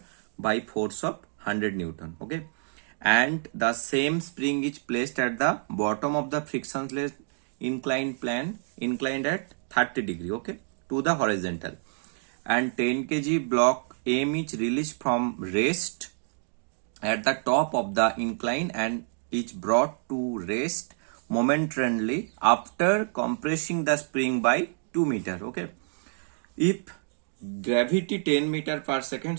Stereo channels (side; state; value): left; silent; 59 dB below the other